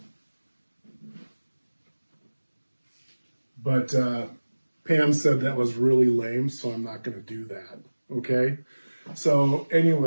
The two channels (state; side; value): inverted; both; correlation -1.00